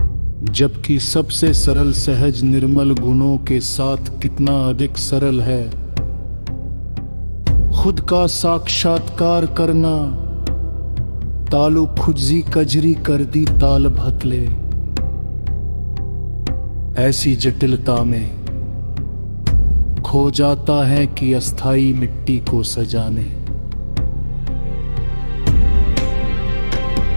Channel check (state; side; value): inverted; both; correlation -1.00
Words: जबकि सबसे सरल सहज निर्मल गुणों के साथ कितना अधिक सरल है खुद का साक्षात्कार करना। तालु खुजी कजरी कर दी ताल भतले, ऐसी जटिलता में खो जाता है कि अस्थाई मिट्टी को सजाने।